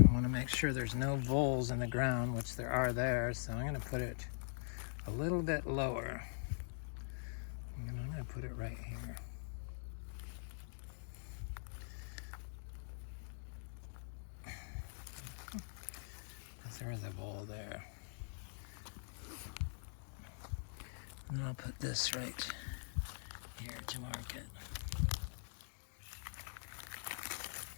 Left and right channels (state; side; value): silent; right; digital silence